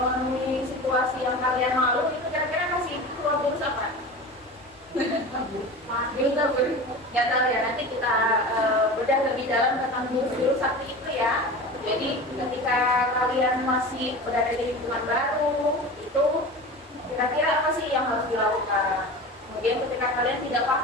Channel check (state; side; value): normal; both; correlation 0.32